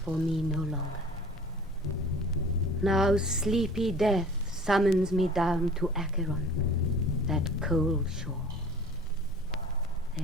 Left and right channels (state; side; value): normal; both; correlation 0.45